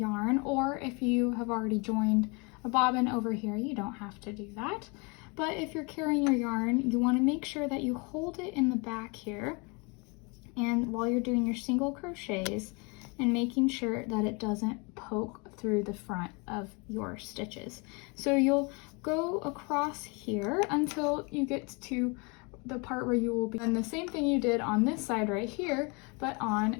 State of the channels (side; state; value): right; quieter; 30.5 dB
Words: or if you have already joined a bobbin over here, you don't have to do that. But if you're carrying your yarn, you want to make sure that you hold it in the back here, and while you're doing your single crochets, and making sure that it doesn't poke through the front of your stitches. So you'll go across here until you get to the part where you will be doing the same thing you did on this side right here, but on